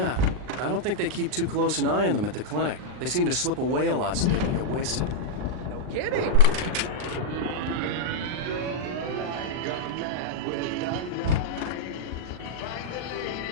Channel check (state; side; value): late; left; 39 ms